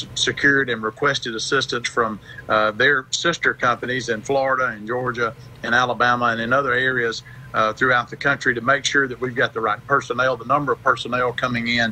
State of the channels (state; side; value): identical; both; correlation 1.00